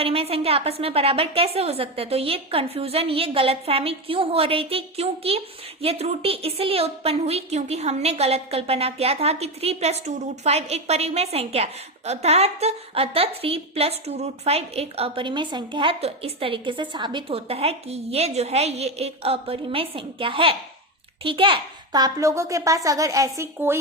संख्या आपस में बराबर कैसे हो सकते हैं, तो ये कंफ्यूजन, ये गलतफहमी क्यों हो रही थी, क्योंकि ये त्रुटि इसलिए उत्पन्न हुई क्योंकि हमने गलत कल्पना किया था कि 3 + 2 √5 एक परिमेय संख्या है, अतः 3 + 2 √5 एक अपरिमेय संख्या है। तो इस तरीके से साबित होता है कि ये जो है ये एक अपरिमेय संख्या है। ठीक है, तो आप लोगों के पास अगर ऐसी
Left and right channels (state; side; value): normal; both; correlation 0.15